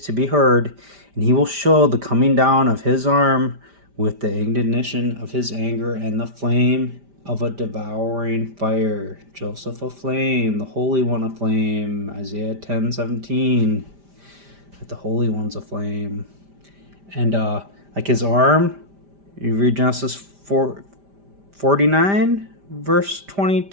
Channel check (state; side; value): late; left; 5.0 ms